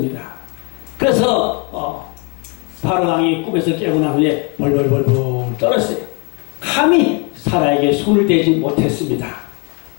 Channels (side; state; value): right; quieter; 33.1 dB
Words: 그래서 바로 왕이 꿈에서 깨고 난 후에 벌벌벌벌 떨었어요. 감히 사라에게 손을 대지 못했습니다.